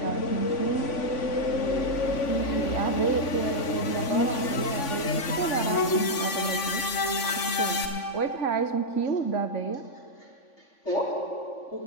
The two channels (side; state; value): right; late; 3.5 ms